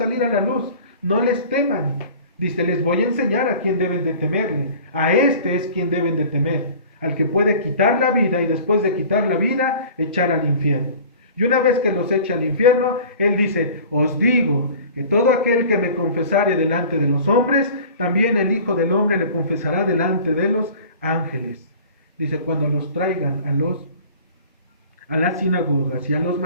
a la luz, no les teman. Dice, les voy a enseñar a quién deben de temerle, a este es quien deben de temer, al que puede quitar la vida y después de quitar la vida, echar al infierno. Y una vez que los echa al infierno, Él dice, os digo que todo aquel que me confesare delante de los hombres, también el Hijo del Hombre le confesará delante de los ángeles. Dice, cuando los traigan a las sinagogas y a los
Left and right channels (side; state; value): both; inverted; correlation -0.43